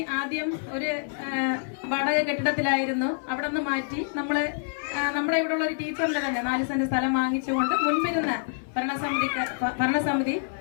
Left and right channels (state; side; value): silent; right; 56 dB below the other